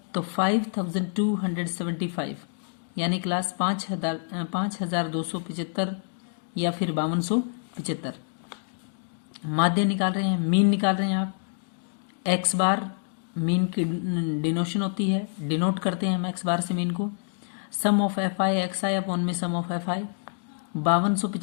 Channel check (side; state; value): right; silent; digital silence